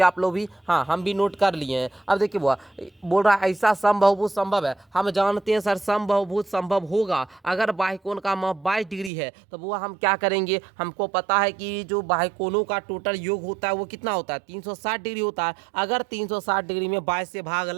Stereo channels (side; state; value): left; drops out; at 9.1 s